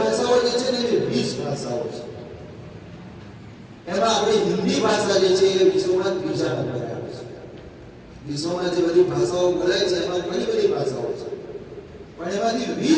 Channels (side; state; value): both; identical; correlation 1.00